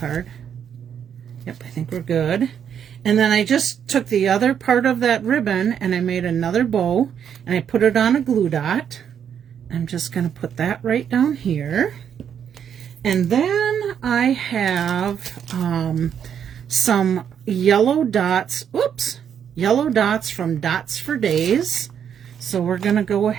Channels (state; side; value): quieter; left; 8.4 dB